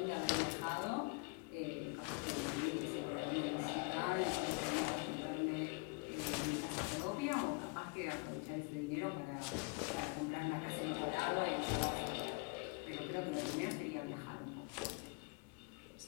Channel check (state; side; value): quieter; right; 31.7 dB